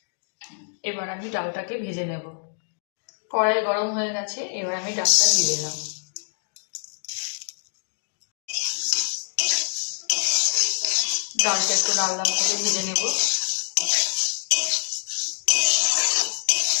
এবার আমি ডালটাকে ভেজে নেব। কড়াই গরম হয়ে গেছে, এবার আমি ডালটা দিয়ে দিলাম। ডালটা একটু লাল লাল করে ভেজে নেব।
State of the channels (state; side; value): silent; right; digital silence